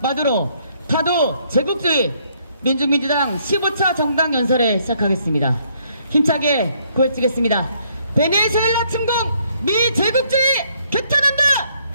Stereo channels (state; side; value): inverted; both; correlation -0.68